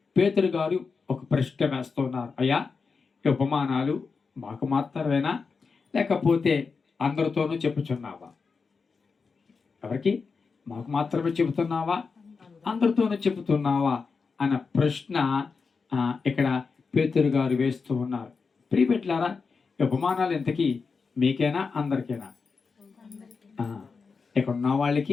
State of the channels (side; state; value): right; quieter; 4.9 dB